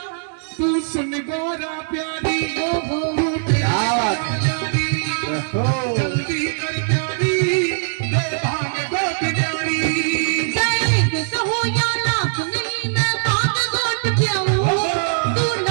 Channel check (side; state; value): left; silent; digital silence